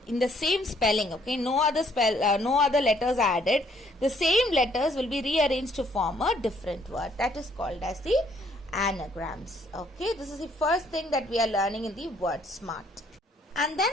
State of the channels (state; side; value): normal; both; correlation 0.65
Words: in the same spelling, okay? No other letters added. The same letters will be rearranged to form a different word. That is called as the anagrams, okay? This is the first thing that we are learning in the Word Smart. And then